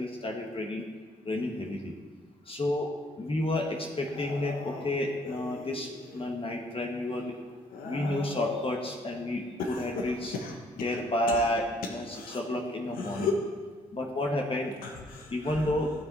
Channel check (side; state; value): both; normal; correlation 0.64